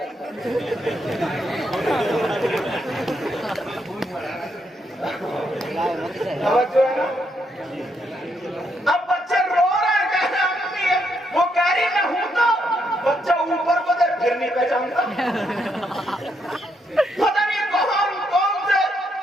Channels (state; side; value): normal; both; correlation 0.77